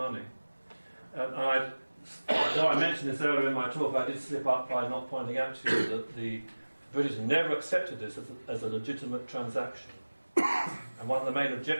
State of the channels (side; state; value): both; inverted; correlation -1.00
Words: Though I mentioned this earlier in my talk, I did slip up by not pointing out to you that the British never accepted this as a legitimate transaction. And one of the main